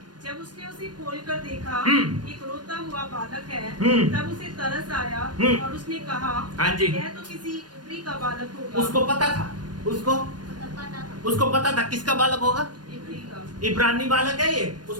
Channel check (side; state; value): left; late; 0.70 ms